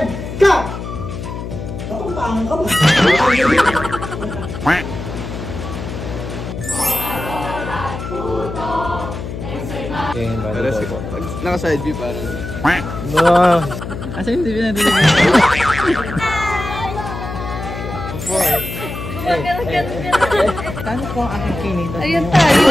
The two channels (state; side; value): noise; left; hum, 7 dB below the sound